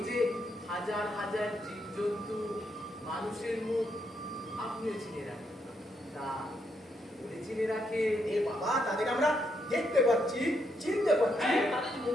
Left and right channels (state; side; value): normal; both; correlation 0.77